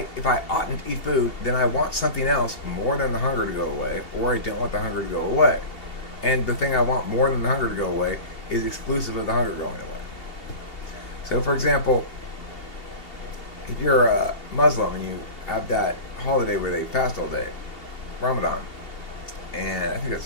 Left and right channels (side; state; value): right; late; 2.7 ms